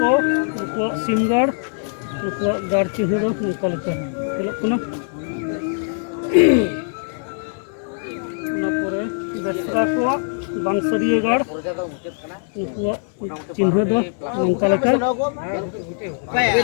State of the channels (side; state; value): right; silent; digital silence